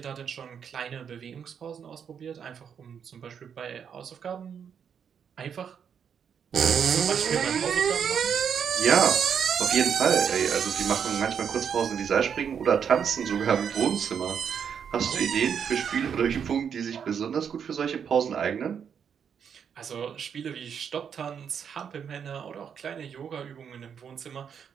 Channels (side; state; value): left; quieter; 7.5 dB